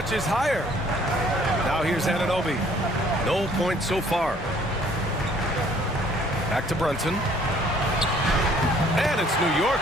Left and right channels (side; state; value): both; normal; correlation 0.59